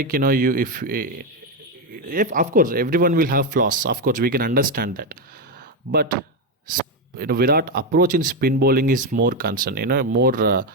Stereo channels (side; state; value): both; normal; correlation 0.08